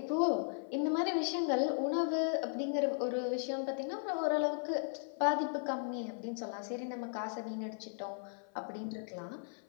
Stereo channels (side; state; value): right; silent; 53 dB below the other